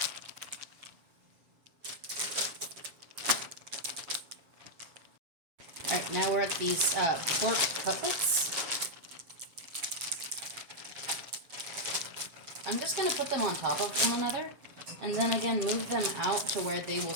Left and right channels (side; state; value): left; late; 7.3 ms